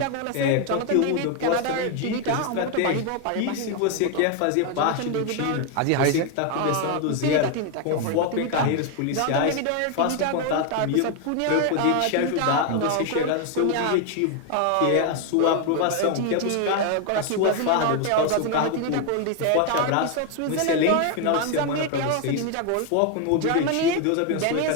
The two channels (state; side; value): different; both; correlation 0.01